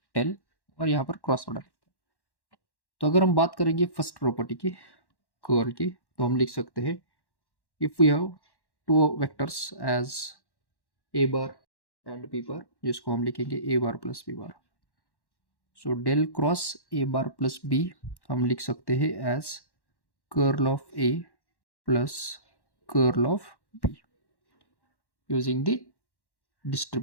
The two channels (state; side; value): late; right; 1.1 ms